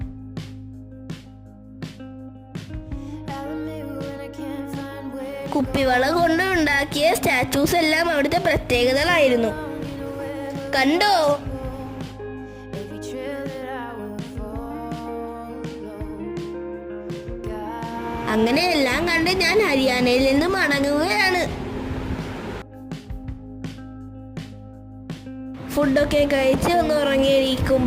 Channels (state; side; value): identical; both; correlation 1.00